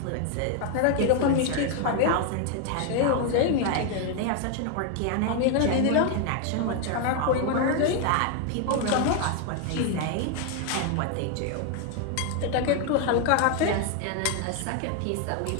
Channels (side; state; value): both; different; correlation 0.00